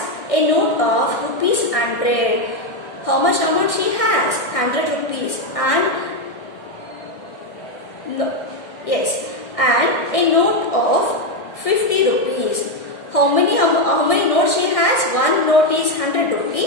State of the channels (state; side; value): late; right; 1.6 ms